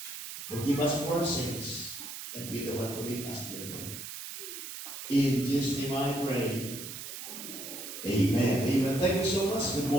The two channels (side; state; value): right; noise; hiss, 9 dB below the sound